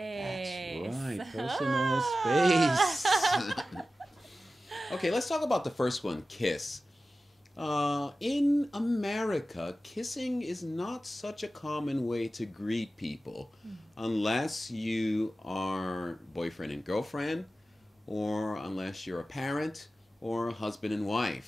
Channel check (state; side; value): normal; both; correlation 0.95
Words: That's right, personal space. Okay, let's talk about the first one, kiss. In America, kissing is not such a common way to greet people unless you are boyfriend and girlfriend, or unless you're a parent or a husband and